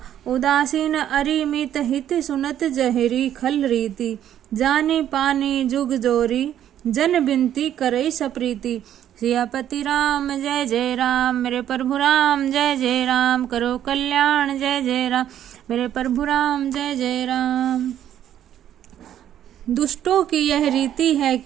उदासीन अरिमित हित सुनत जहरी खल रीति जानी पानी जुग जोरी जन बिनती करई सप्रीति। सियापति राम जय जय राम, मेरे प्रभु राम जय जय राम, करो कल्याण जय जय राम, मेरे प्रभु राम जय जय राम। दुष्टों की यह रीति है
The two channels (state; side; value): quieter; left; 10.8 dB